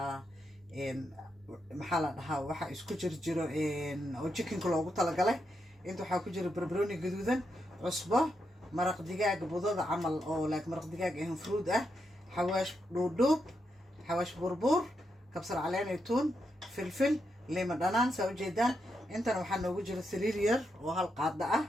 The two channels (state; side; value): normal; both; correlation 0.83